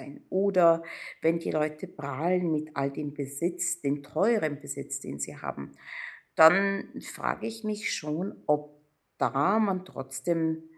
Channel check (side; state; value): both; identical; correlation 1.00